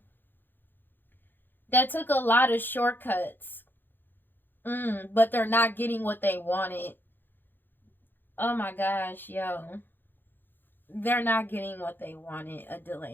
that took a lot of shortcuts. But they're not getting what they wanted. Oh my gosh, yo. They're not getting what they wanted. A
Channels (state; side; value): late; right; 0.095 ms